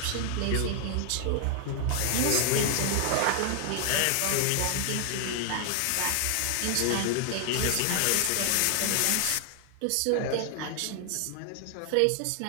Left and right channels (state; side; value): different; both; correlation 0.00